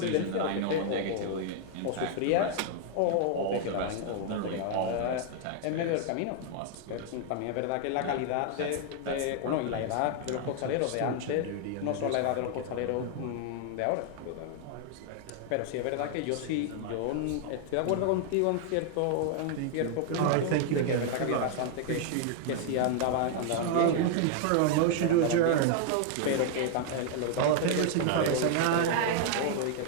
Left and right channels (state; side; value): different; both; correlation 0.00